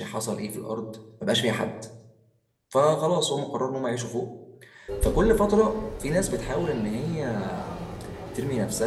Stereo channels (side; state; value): both; identical; correlation 1.00